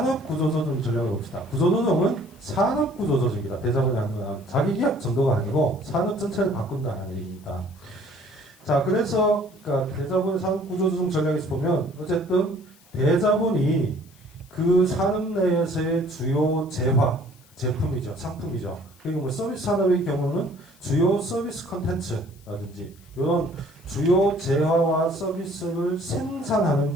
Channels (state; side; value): noise; left; hiss, 28 dB below the sound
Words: 전략을 봅시다. 구조조정은 산업구조조정이다. 대자본이 하는 건 자기 기업 정도가 아니고 산업 전체를 바꾼다는 얘기입니다. 자, 그래서 그러니까 대자본의 산업구조조정 전략에서 보면 어쨌든 대자본이 그 산업 내에서의 주요 재화, 제품이죠. 상품이죠. 그리고 뭐 서비스 산업의 경우는 주요 서비스 컨텐츠라든지 이런 주요 재화와 서비스를 생산하는